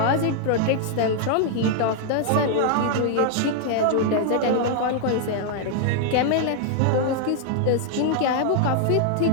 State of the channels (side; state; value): both; different; correlation 0.00